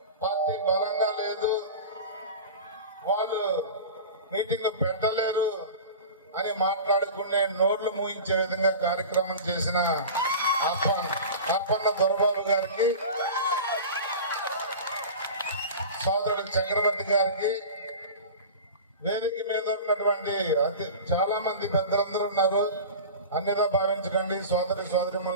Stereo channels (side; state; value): both; inverted; correlation -0.33